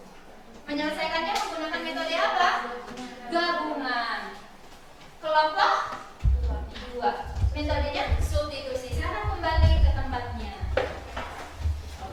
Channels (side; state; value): both; identical; correlation 1.00